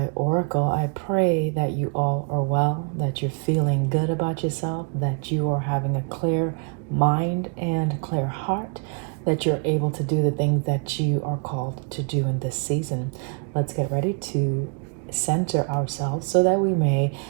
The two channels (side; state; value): left; quieter; 38.3 dB